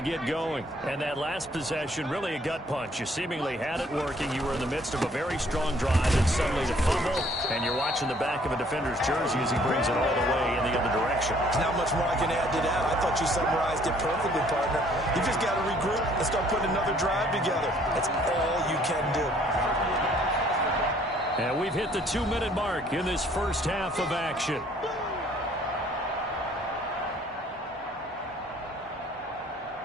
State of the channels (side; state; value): both; normal; correlation 0.60